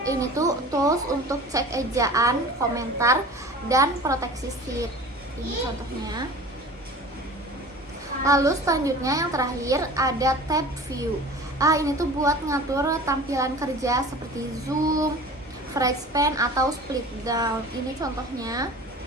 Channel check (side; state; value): both; normal; correlation 0.40